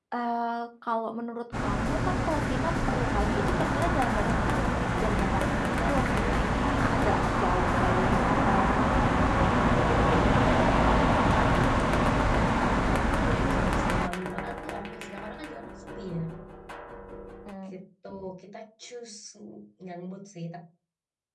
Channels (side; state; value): both; identical; correlation 1.00